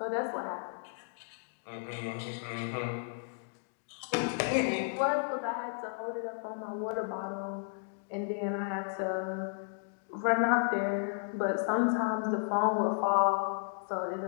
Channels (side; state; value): right; silent; digital silence